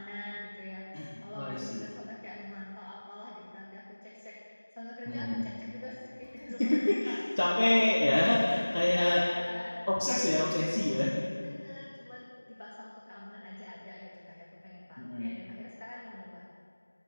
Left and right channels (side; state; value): both; inverted; correlation -1.00